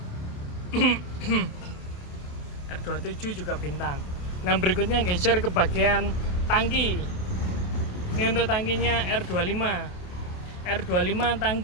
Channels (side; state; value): right; late; 28 ms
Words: R27 juga bintang. Nah, berikutnya geser ke bagian tangki. Ini untuk tangkinya R25. R25